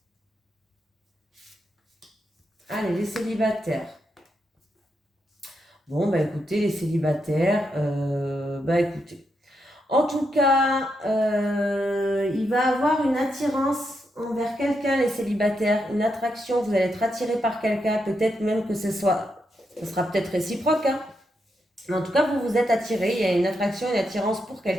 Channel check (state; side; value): normal; both; correlation 0.82